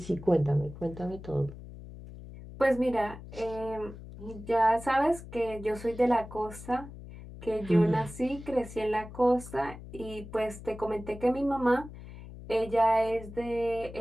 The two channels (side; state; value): left; noise; hum, 14 dB below the sound